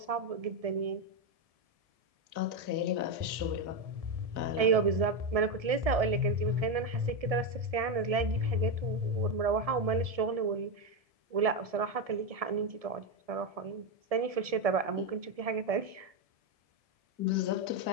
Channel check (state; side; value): late; left; 1.7 ms